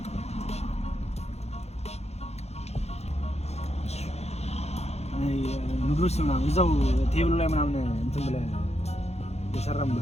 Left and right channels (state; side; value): late; right; 0.31 ms